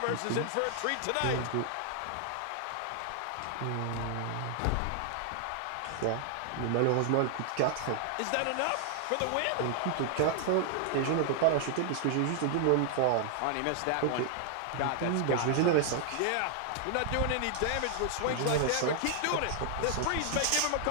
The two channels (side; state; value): both; different; correlation 0.00